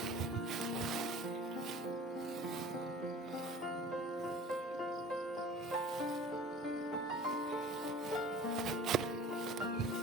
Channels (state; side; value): normal; both; correlation 0.44